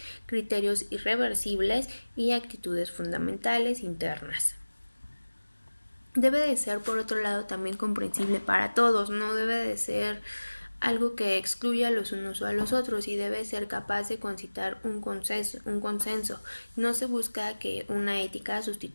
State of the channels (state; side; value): inverted; both; correlation -1.00